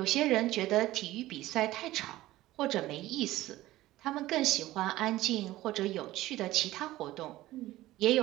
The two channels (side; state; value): left; quieter; 16.4 dB